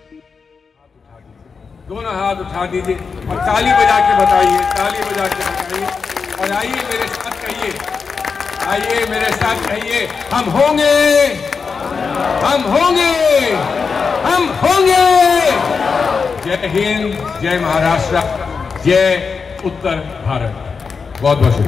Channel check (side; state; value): right; quieter; 5.3 dB